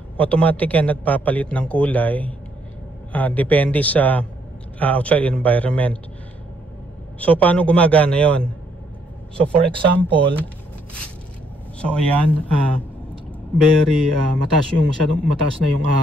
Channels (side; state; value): both; normal; correlation 0.71